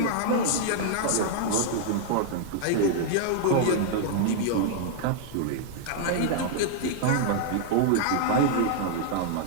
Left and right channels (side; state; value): both; different; correlation -0.01